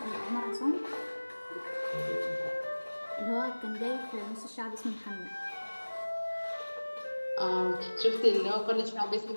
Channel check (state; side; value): inverted; both; correlation -1.00